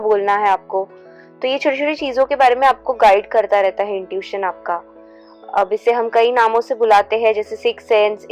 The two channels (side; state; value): both; identical; correlation 1.00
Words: है आपको। तो ये छोटी छोटी चीज़ों के बारे में आपको गाइड करता रहता है इंट्यूशन आपका। अब इसे हम कई नामों से बुलाते हैं, जैसे six sense,